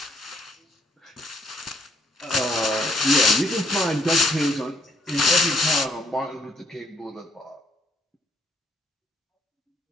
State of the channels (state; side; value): normal; both; correlation 0.69